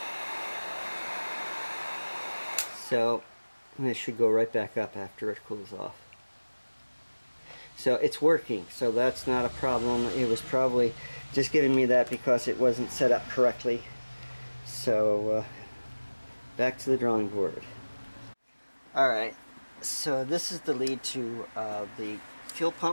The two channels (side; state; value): both; inverted; correlation -1.00